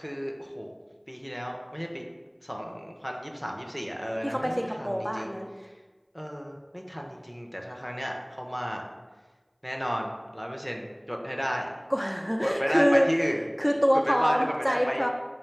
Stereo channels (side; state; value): both; identical; correlation 1.00